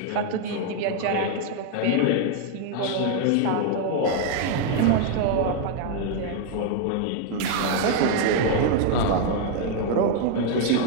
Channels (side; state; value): both; different; correlation 0.00